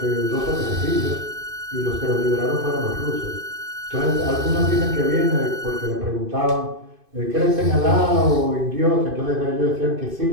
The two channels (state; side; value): late; left; 2.5 ms